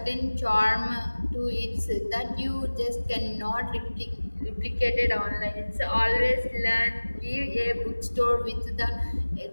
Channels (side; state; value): both; inverted; correlation -1.00